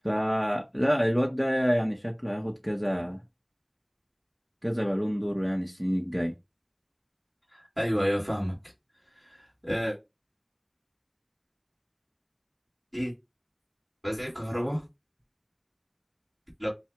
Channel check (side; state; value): both; identical; correlation 1.00